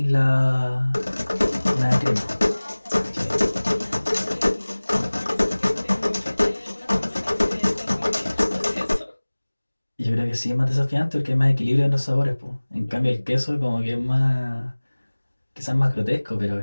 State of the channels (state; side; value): inverted; both; correlation -1.00